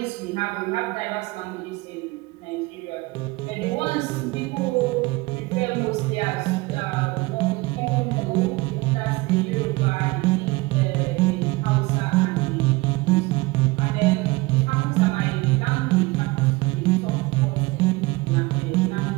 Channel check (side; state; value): left; quieter; 22.8 dB